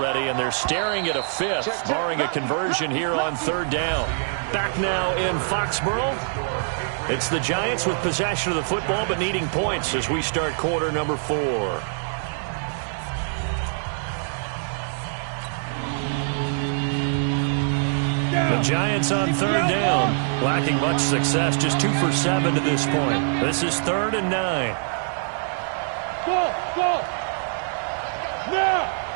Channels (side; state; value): left; silent; digital silence